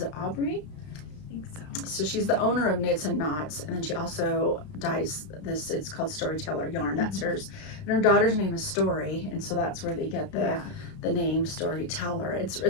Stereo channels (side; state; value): right; late; 33 ms